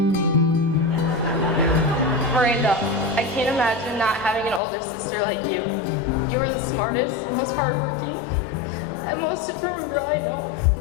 I can't imagine not having an older sister like you. You are the smartest, most hardworking, and most determined girl I know.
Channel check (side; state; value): right; drops out; at 4.6 s